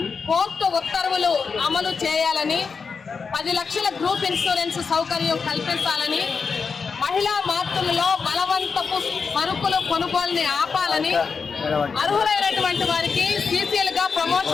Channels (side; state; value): right; quieter; 5.3 dB